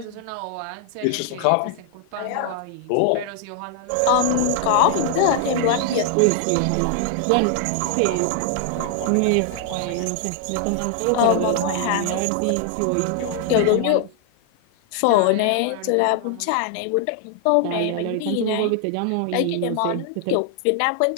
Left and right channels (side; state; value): both; different; correlation 0.00